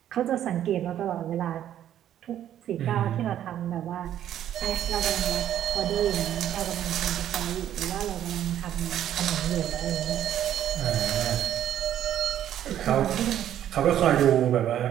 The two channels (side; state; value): left; quieter; 11.1 dB